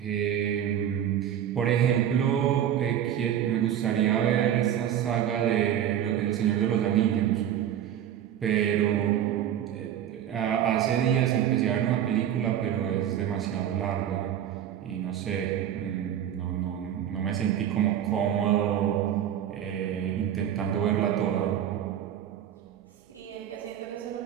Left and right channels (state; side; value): quieter; left; 10.3 dB